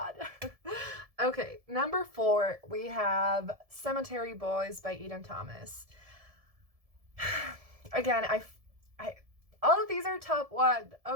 Okay, number 4, we have Cemetery Boys by Eden Thomas. Again, all of these are top 1,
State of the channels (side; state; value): left; late; 1.7 ms